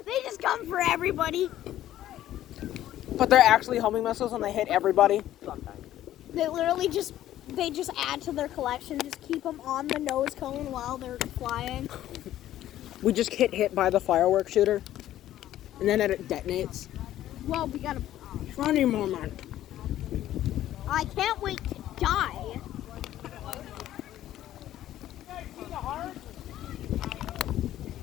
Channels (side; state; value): right; quieter; 13.0 dB